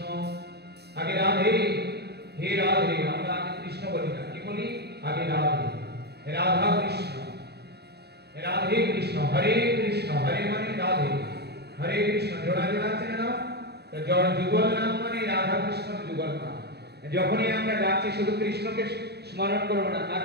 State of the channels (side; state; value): left; late; 0.48 ms